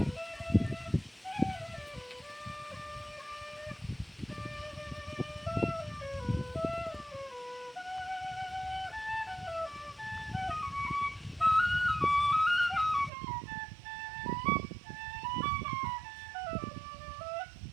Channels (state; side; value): drops out; left; at 13.1 s